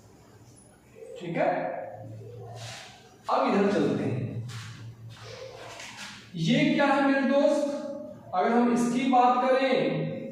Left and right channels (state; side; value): identical; both; correlation 1.00